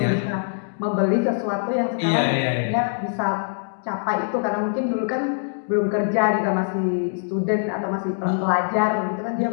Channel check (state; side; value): silent; right; digital silence